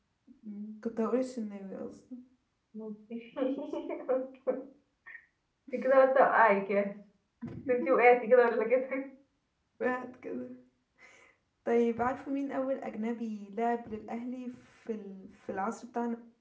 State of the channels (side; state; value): both; identical; correlation 1.00